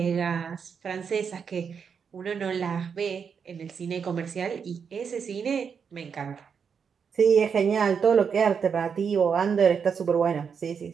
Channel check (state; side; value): quieter; left; 6.5 dB